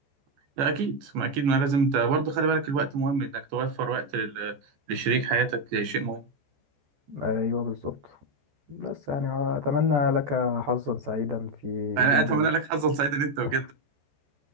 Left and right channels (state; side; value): late; left; 14 ms